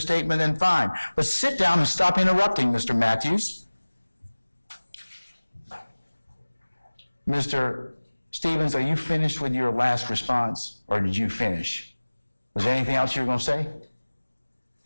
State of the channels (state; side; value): inverted; both; correlation -1.00